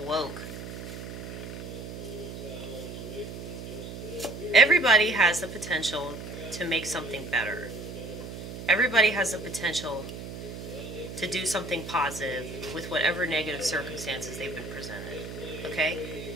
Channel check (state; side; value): noise; right; hum, 9 dB below the sound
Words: woke. Everybody has the potential to make something better. Everybody has the potential to do something positive with whatever negative circumstances they've been presented. Okay?